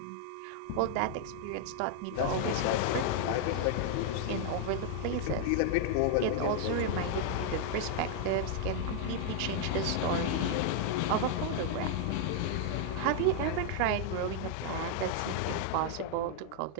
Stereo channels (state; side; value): different; both; correlation -0.01